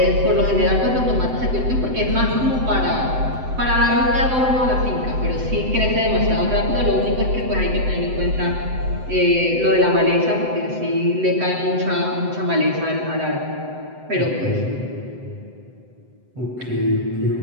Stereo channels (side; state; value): left; late; 7.8 ms